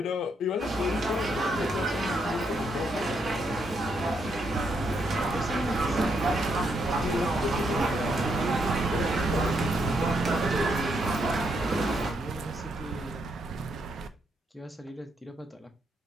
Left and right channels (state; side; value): normal; both; correlation 0.77